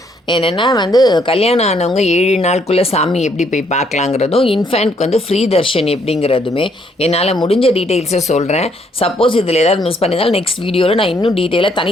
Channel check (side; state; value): both; normal; correlation 0.69